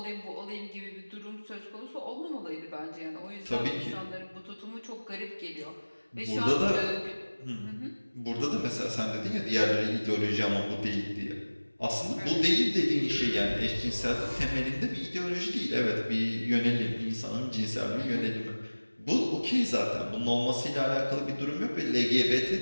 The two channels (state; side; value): inverted; both; correlation -1.00